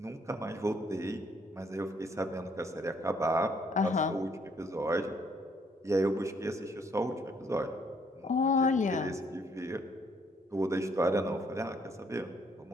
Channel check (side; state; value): both; normal; correlation 0.67